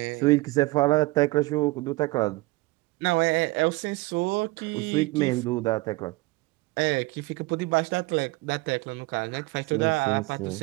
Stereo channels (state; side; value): quieter; left; 22.1 dB